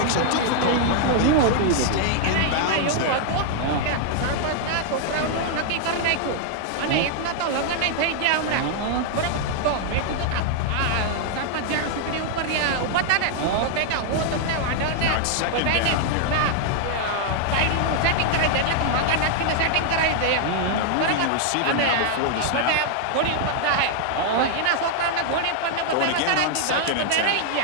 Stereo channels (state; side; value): different; both; correlation -0.01